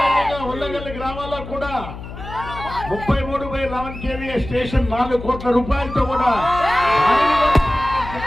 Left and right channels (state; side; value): noise; left; hum, 12 dB below the sound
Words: ఉల్లగల్లి గ్రామాల్లో కూడా 33/11 kVA స్టేషన్ 4 కోట్ల రూపాయలతో కూడా